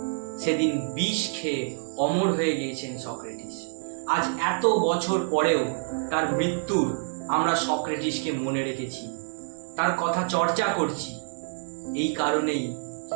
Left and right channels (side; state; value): left; silent; digital silence